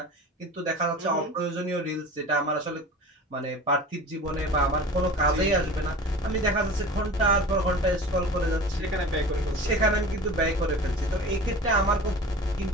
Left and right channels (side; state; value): both; normal; correlation 0.37